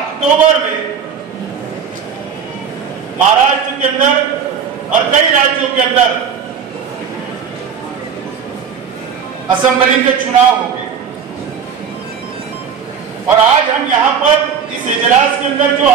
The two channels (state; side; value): quieter; left; 7.1 dB